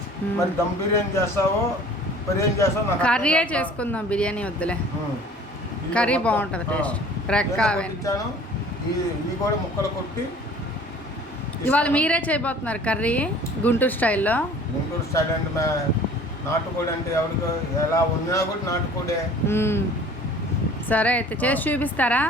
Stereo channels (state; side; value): normal; both; correlation 0.48